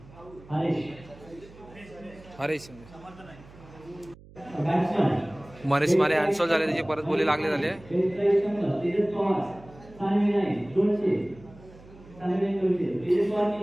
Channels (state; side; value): noise; right; hum, 21 dB below the sound